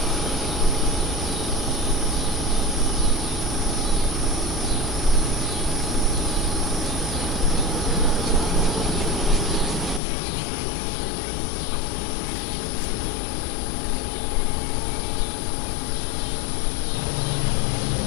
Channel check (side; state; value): right; drops out; at 10.0 s